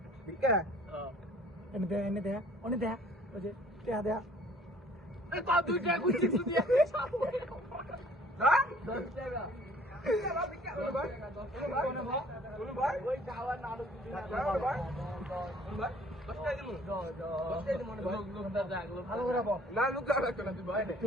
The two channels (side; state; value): both; normal; correlation 0.55